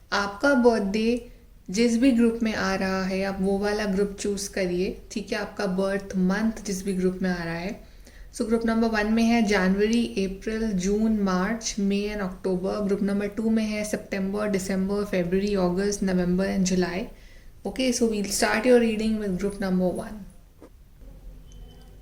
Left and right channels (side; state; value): both; identical; correlation 1.00